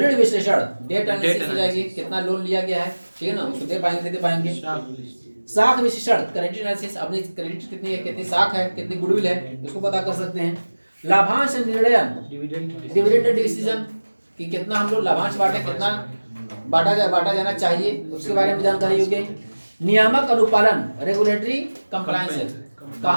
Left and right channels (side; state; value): both; inverted; correlation -1.00